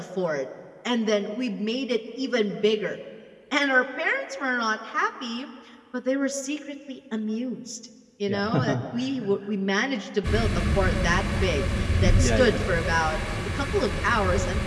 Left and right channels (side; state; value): both; identical; correlation 1.00